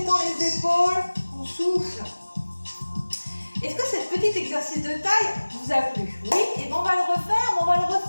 les épaules. On souffle. Est-ce que ce petit exercice de taille vous a plu? Oui. Et bien on va le refaire. On va le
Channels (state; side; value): inverted; both; correlation -1.00